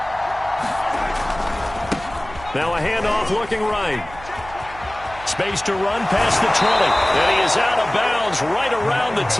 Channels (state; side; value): noise; right; hum, 17 dB below the sound